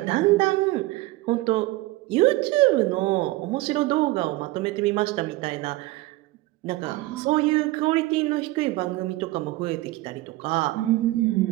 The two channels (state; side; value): quieter; left; 19.0 dB